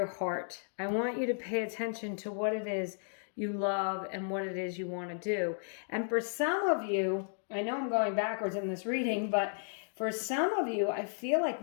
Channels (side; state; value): right; silent; digital silence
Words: heart. I want you to pay attention to what it is you love and what it is you want to do. And for some of you, I know I'm going backwards in this reading, but for some of you, I feel